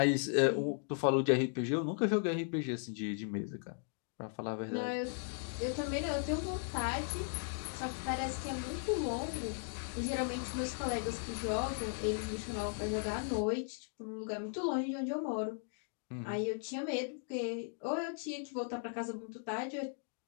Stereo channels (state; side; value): silent; right; 53 dB below the other